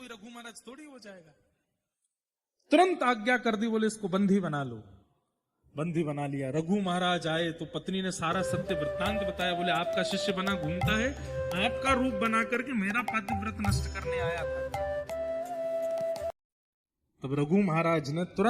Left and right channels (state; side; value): identical; both; correlation 1.00